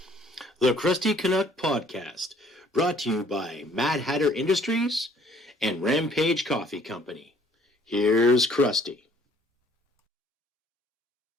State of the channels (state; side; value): normal; both; correlation 0.59